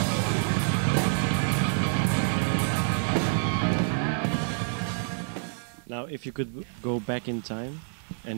Now, if you could go back in time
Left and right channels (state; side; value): silent; left; digital silence